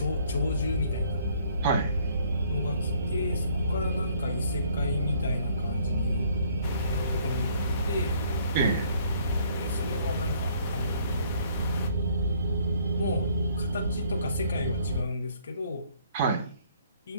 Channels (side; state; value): both; inverted; correlation -0.62